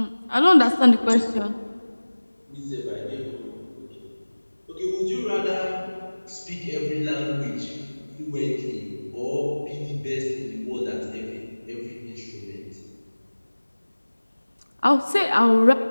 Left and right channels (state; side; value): inverted; both; correlation -1.00